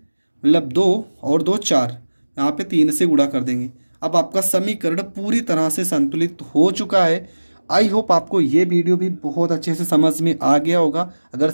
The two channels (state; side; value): inverted; both; correlation -1.00